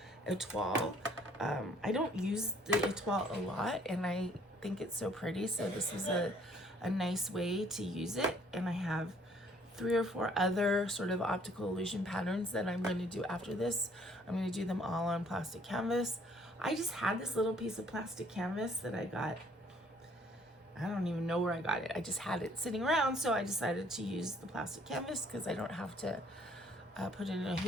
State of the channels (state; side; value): normal; both; correlation 0.61